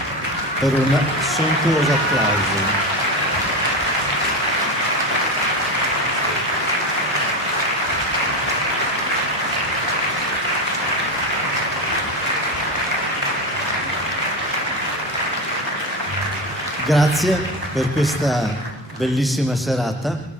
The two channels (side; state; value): both; normal; correlation 0.21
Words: per un sontuoso applauso. Grazie per questa bellissima serata.